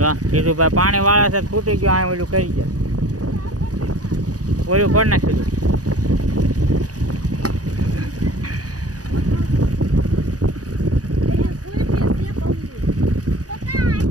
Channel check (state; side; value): late; left; 0.67 ms